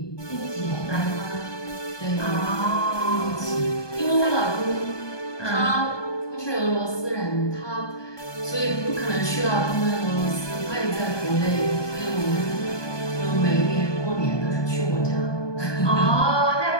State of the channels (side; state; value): right; late; 1.2 ms